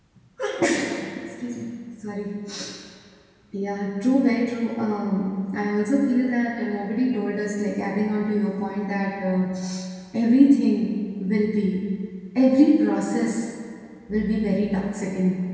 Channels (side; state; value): both; identical; correlation 1.00